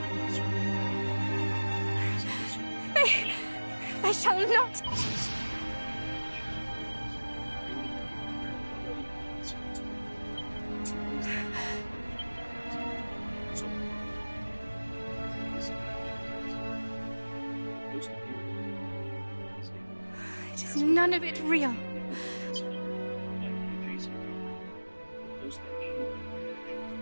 I shall not. It is none of it real.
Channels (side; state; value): both; inverted; correlation -1.00